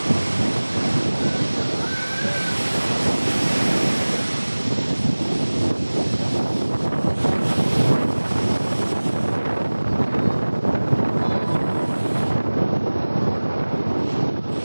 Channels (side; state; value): both; inverted; correlation -1.00